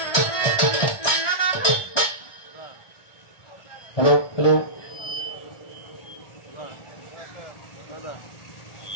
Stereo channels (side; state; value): right; late; 1.4 ms